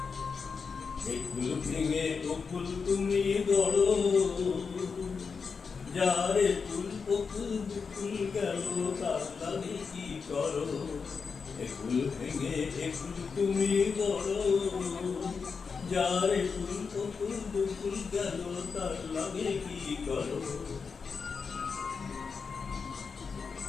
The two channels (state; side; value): quieter; right; 5.4 dB